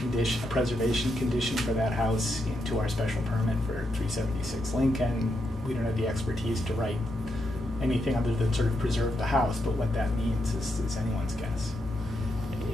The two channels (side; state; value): both; normal; correlation 0.82